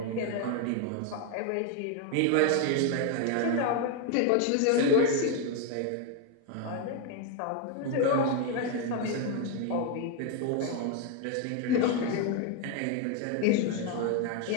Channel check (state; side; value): different; both; correlation 0.01